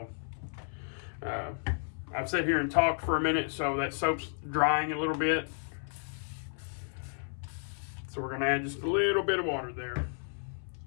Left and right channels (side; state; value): right; silent; 56 dB below the other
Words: I've sat here and talked for a minute, so that soap's drying a little bit. So we're going to add just a little bit of water there.